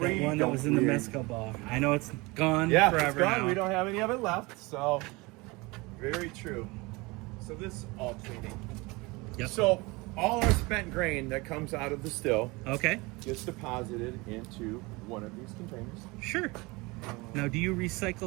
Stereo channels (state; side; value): quieter; left; 24.6 dB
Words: one that don't was in the really- mezcal bar. I know it's gone yeah, forever it's gone. now. We don't have any of it left. So very true. So this is all cleaning. Yep. So all our spent grain that comes out of the still Okay, gets deposited into one of these containers. sure. Now, do you